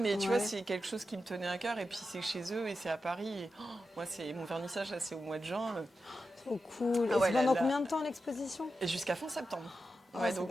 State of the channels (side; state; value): both; normal; correlation 0.90